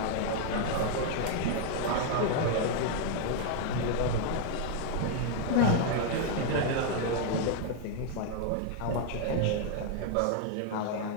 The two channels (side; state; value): both; different; correlation 0.00